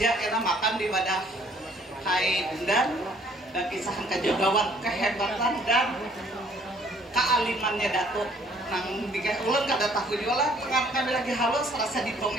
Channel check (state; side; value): normal; both; correlation 0.60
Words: kita makan di wadah Kai Bundan dan kisahan kajagawan kehebatan dan kealimannya Datuk. Nang dikasih ulun kada tahu juga lah, kami lagi halus rasa